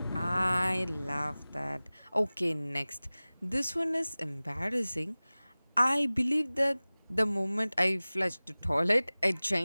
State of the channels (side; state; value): both; inverted; correlation -0.99